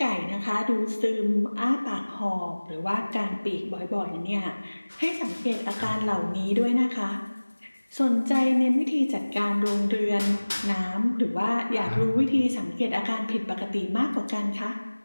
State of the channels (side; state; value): both; inverted; correlation -1.00